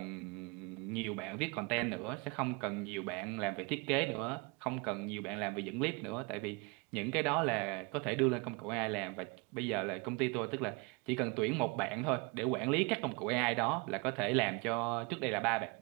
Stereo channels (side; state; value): left; quieter; 29.1 dB